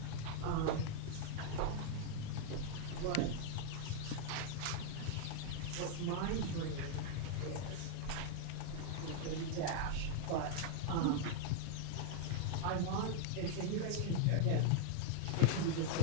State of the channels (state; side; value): different; both; correlation 0.00